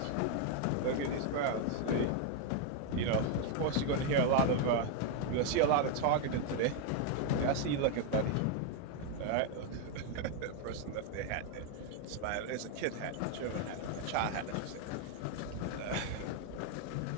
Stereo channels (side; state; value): both; different; correlation 0.01